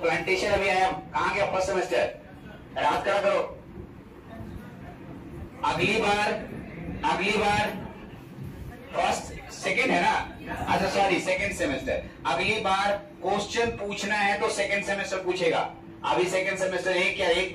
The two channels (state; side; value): identical; both; correlation 1.00